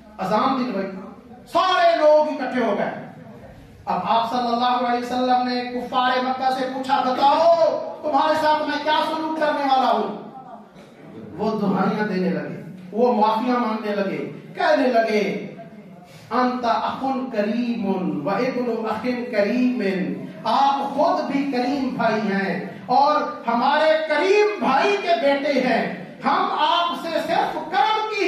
اذان دلوائی، سارے لوگ اکٹھے ہو گئے۔ اب آپ صلی اللہ علیہ وسلم نے کفار مکہ سے پوچھا بتاؤ تمہارے ساتھ میں کیا سلوک کرنے والا ہوں؟ وہ دہائیاں دینے لگے، وہ معافیاں مانگنے لگے، کہنے لگے انت اخن کریم و ابن اخن کریم، آپ خود بھی کریم بھائی ہیں اور ہمارے کریم بھائی کے بیٹے ہیں، ہم آپ سے صرف کرم کی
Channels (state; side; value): identical; both; correlation 1.00